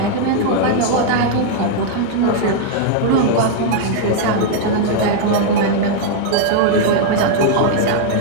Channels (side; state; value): both; different; correlation -0.01